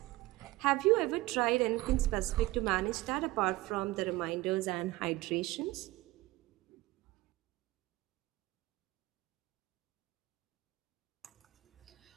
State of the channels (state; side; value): quieter; left; 19.2 dB